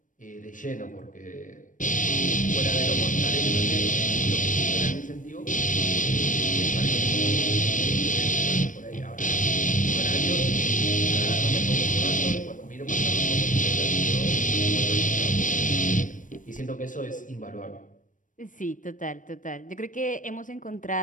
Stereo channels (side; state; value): right; late; 0.38 ms